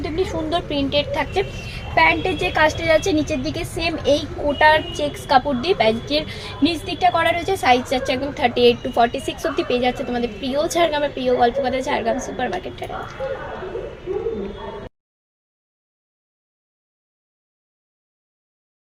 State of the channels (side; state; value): both; identical; correlation 1.00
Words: এমনি সুন্দর প্রিন্টেড থাকছে। প্যান্টের যে কাজটা যাচ্ছে নিচের দিকে সেম এই কোটার চেক্স কাপড় দিয়ে প্যান্টের নিচ দিকটা করা রয়েছে। সাইজ যাচ্ছে একদম 38 to 46 অব্দি পেয়ে যাচ্ছে তোমাদের প্রিয় ঝাড়গ্রামের প্রিয় গল্পকথা ঝাড়গ্রাম সুপার মার্কেটটা।